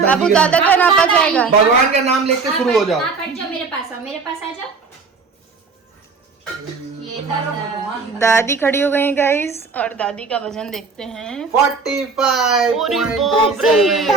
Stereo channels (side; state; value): left; quieter; 4.6 dB